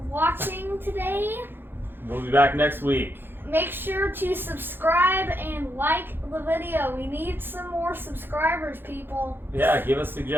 watching today. We'll be back next week. Make sure to subscribe and like the video. We need some more subscribers, people. Yeah, give us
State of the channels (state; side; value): late; left; 0.10 ms